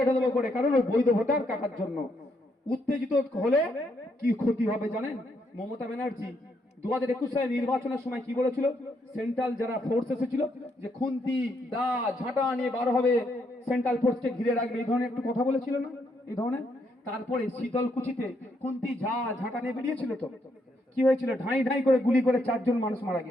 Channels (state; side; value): normal; both; correlation 0.75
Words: করে, কারণ ওই বৈধ ভোটার কাটার জন্য। উত্তেজিত হলে কি ক্ষতি হবে জানেন? মমতা ব্যানার্জি 2021 সালে নির্বাচনের সময় কি বলেছিল? সেন্ট্রাল যারা ফোর্স এসেছিল যে খুন্তি দা ঝাঁটা নিয়ে বার হবে, সেন্ট্রাল ফোর্সকে ঘিরে রাখবে, এই ধরনের একটু কথা বলেছিল না? এই ধরনের। তারপরে শীতলকুচিতে খুন্তি ঝাঁটা নিয়ে বেরিয়েছিল তো, কি হয়েছিল? ঢাই ঢাই করে গুলি করে 4 জন মানুষ মারা